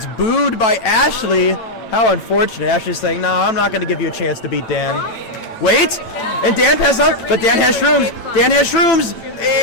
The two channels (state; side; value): late; right; 8.9 ms